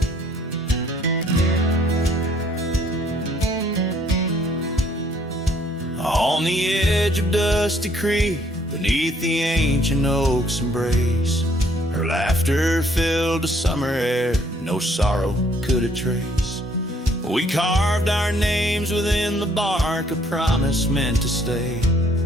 On the edge of Dusty Creek, beneath the ancient oak's embrace, her laughter filled the summer air, no sorrow could it trace. We carved our names within the bark, a promise meant to stay.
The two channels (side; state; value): both; normal; correlation 0.63